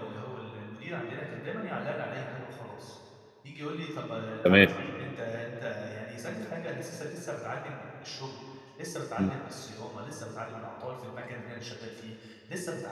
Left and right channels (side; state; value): both; identical; correlation 1.00